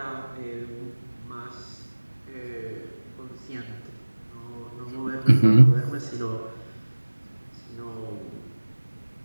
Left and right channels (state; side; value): inverted; both; correlation -1.00